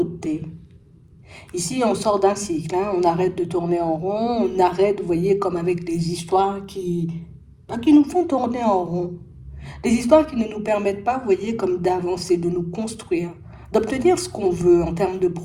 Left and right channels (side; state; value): both; identical; correlation 1.00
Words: Ici, on sort d'un cycle, hein. On arrête de tourner en rond, on arrête, vous voyez, comme avec des histoires qui nous font tourner en rond. Des histoires qui ne nous permettent pas, vous voyez, comme d'avancer, de nous construire, d'obtenir ce qu'on veut en termes de